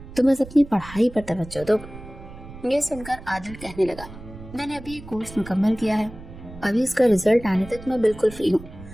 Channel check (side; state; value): right; noise; rumble, 16 dB below the sound